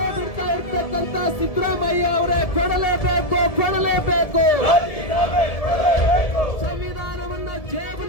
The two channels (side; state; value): right; late; 1.7 ms